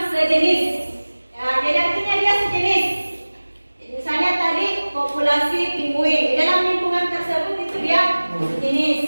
sejenis. Ya, jadi artinya dia sejenis. Jadi, misalnya tadi populasi penguin. Di dalam lingkungan tersebut itu dia sejenis.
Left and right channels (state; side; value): inverted; both; correlation -1.00